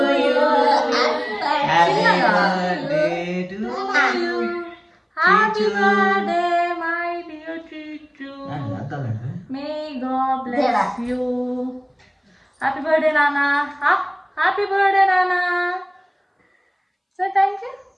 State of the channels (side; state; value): both; identical; correlation 1.00